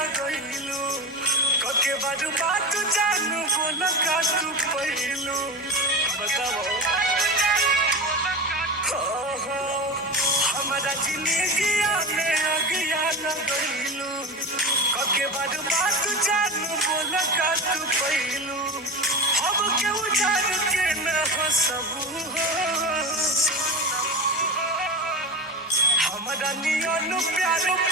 कके बारू बात जानू बोल का तू पहिलू बताओ हमारा जिंदगी में अगिया लगैलू कके बारू बात जानू बोल का तू पहिलू अब के उजाड़ के न हो सबू हमारा नियन प्यार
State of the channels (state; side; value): normal; both; correlation 0.26